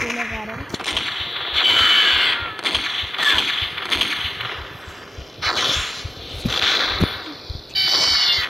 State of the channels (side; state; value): both; normal; correlation 0.96